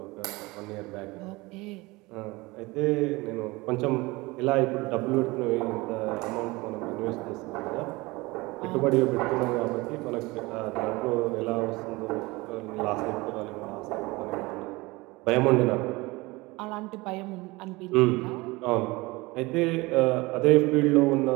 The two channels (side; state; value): left; quieter; 22.7 dB